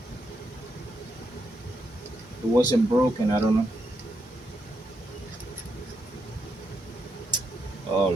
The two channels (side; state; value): both; normal; correlation 0.81